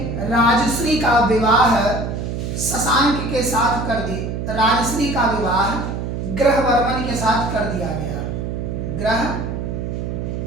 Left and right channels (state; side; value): noise; right; hum, 4 dB below the sound